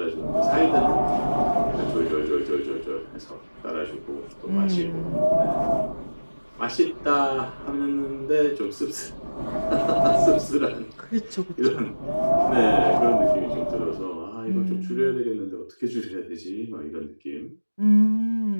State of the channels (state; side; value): inverted; both; correlation -1.00